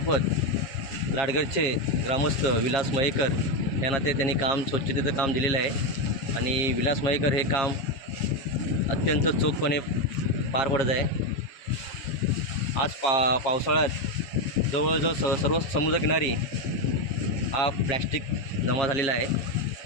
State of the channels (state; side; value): late; right; 7.4 ms